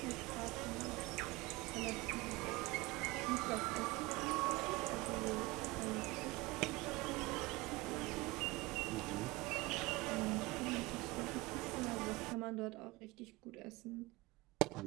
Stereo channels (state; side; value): quieter; left; 21.9 dB